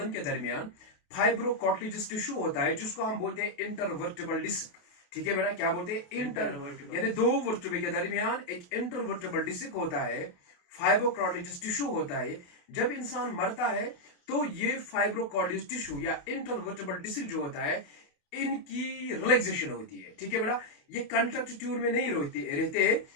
के दरमियान फाइब्रोकॉर्टिलेजस टिश्यू होता है जिसको हम बोलते हैं इंटरवर्टिबल डिस्क। ठीक है बेटा, क्या बोलते हैं, इंटर, यानी दो वर्टिब्रे के दरमियान एक इंटरवर्टिबल डिस्क होता है, फाइब्रोकॉर्टिलेजस टिश्यू होता है। जब इंसान मरता है तो ये फाइब्रोकॉर्टिलेजस टिश्यू या इंटरवर्टिबल डिस्क जो होता है इनकी रिलैक्सेशन होती है। ठीक है बेटा, ये कंट्रैक्ट ट्यून में नहीं रहते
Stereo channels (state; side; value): late; right; 28 ms